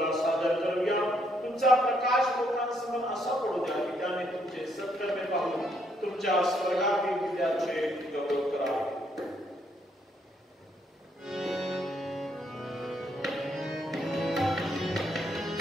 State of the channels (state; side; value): normal; both; correlation 0.73